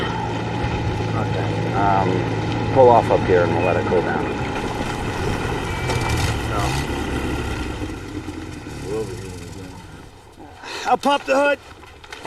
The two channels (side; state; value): both; identical; correlation 1.00